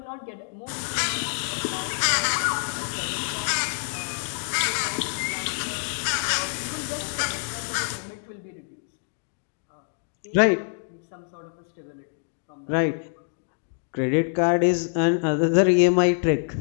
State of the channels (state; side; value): silent; right; 61 dB below the other